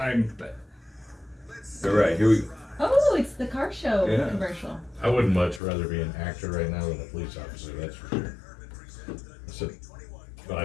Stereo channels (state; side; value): drops out; right; at 5.6 s